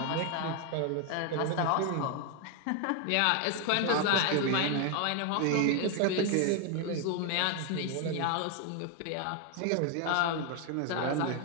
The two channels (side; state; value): both; different; correlation 0.01